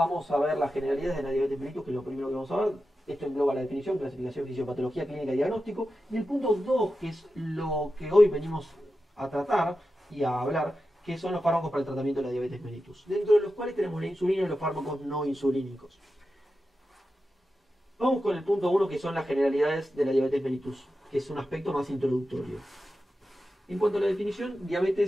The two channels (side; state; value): both; normal; correlation 0.91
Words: a ver las generalidades de la diabetes mellitus, que es lo primero que vamos a ver. Esto engloba la definición, clasificación, fisiopatología, clínica y diagnóstico. Y el punto 2, que es lo que hoy venimos a tratar y a hablar, que son los fármacos para el tratamiento de la diabetes mellitus, dentro de los cuales tenemos la insulina y los fármacos no insulínicos. Vamos con el punto 1, que son las generalidades de la diabetes mellitus, que es un aspecto más introductorio. En cuanto a la definición,